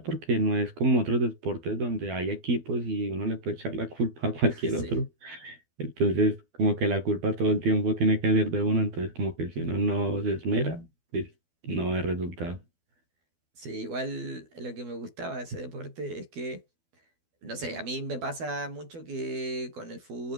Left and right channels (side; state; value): left; late; 12 ms